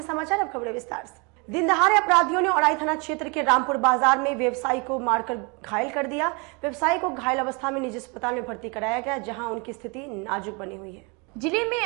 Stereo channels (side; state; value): left; quieter; 31.3 dB